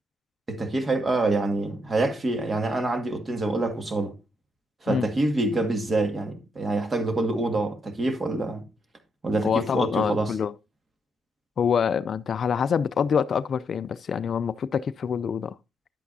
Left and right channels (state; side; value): normal; both; correlation 0.78